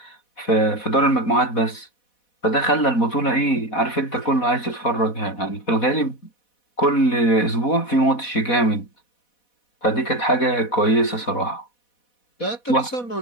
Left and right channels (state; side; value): late; right; 4.1 ms